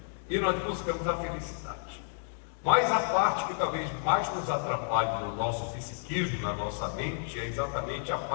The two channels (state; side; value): silent; right; digital silence